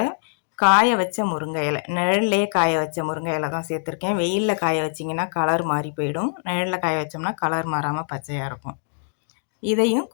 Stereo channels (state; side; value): silent; right; digital silence